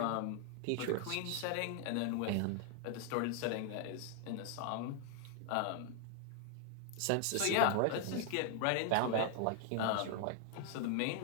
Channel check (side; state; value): both; different; correlation 0.00